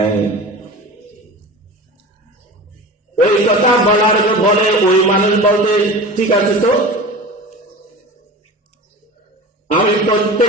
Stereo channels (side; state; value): both; normal; correlation 0.33